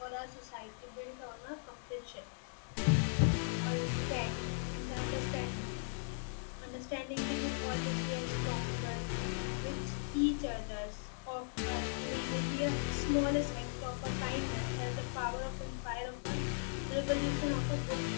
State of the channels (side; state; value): right; silent; digital silence